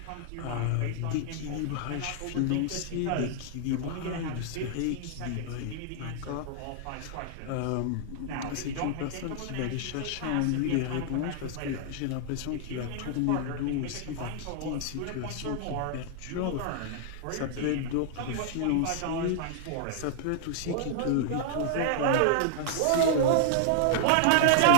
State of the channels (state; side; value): different; both; correlation -0.01